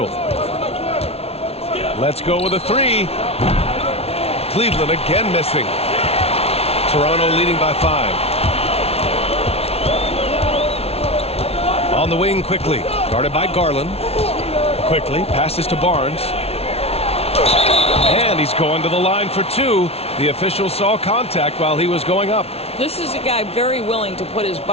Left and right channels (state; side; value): late; right; 0.30 ms